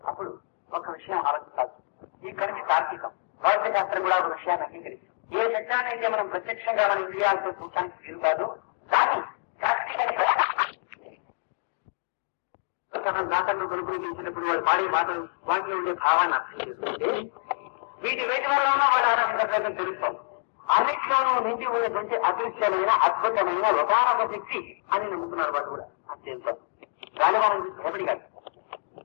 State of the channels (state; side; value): silent; right; digital silence